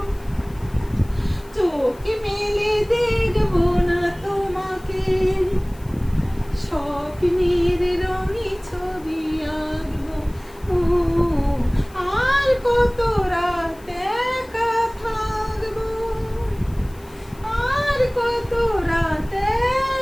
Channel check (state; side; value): noise; left; hiss, 26 dB below the sound